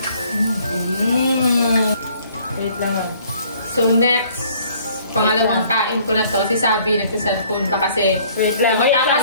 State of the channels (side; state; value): both; inverted; correlation -0.58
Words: Wait lang So next, pangalawang kain ko na to. Si Sabi nagsa-cellphone pa kasi. Wait lang.